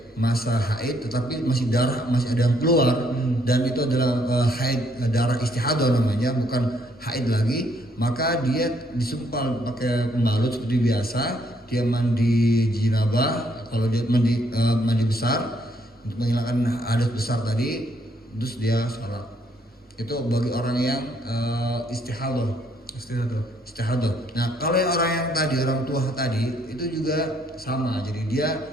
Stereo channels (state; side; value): normal; both; correlation 0.69